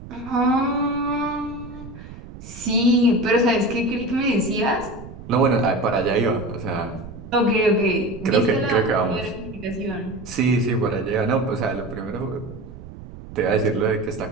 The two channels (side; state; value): right; noise; rumble, 15 dB below the sound